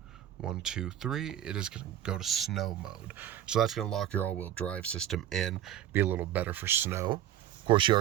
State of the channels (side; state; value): left; quieter; 11.5 dB